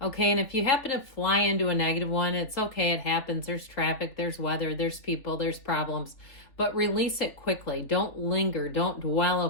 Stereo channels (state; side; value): late; right; 3.4 ms